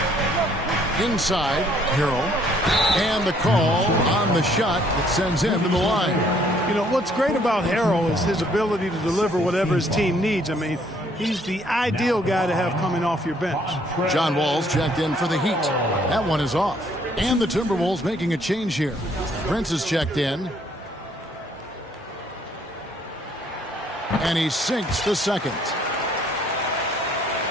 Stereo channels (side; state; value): both; normal; correlation 0.64